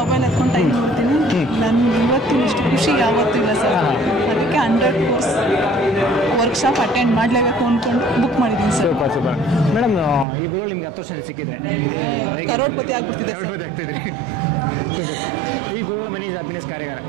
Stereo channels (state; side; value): drops out; left; at 10.2 s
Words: ಎತ್ಕೊಂಡು ಟೈಮ್ ನೋಡ್ತೀನಿ. ನನಗೆ ಇವತ್ತಿನ ಇಷ್ಟು ಖುಷಿ ಯಾವತ್ತೂ ಇಲ್ಲ ಸರ್. ಅದಕ್ಕೆ 100 ಕೋರ್ಸ್ ವರ್ಕ್ಶಾಪ್ ಅಟೆಂಡ್ ಮಾಡಲೇಬೇಕು ಅಂದ್ಕೊಂಡು ಬುಕ್ ಮಾಡಿದ್ದೀನಿ ಸರ್. ಸೂಪರ್ ಮೇಡಮ್, ಈ ಗುರುಗಳು ನಿಮ್ಗೆ 10 ವರ್ಷ ಸಿಕ್ಕಿದ್ರೆ ಹೇಗೆ ಕರೋಡ್ಪತಿ ಆಗ್ತಿದ್ರಿ? ಸೂಪರ್. ಈ ಗುರುಗಳ ಮನಿ ಹ್ಯಾಪಿನೆಸ್ ಕಾರ್ಯಾಗಾರ